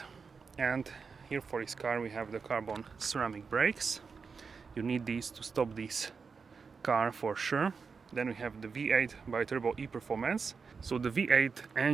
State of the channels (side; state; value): left; quieter; 5.3 dB